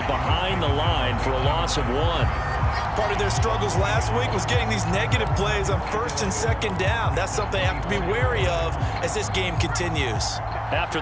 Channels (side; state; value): both; identical; correlation 1.00